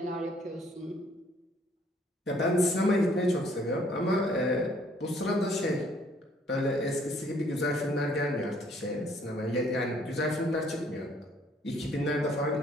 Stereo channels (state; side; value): normal; both; correlation 0.62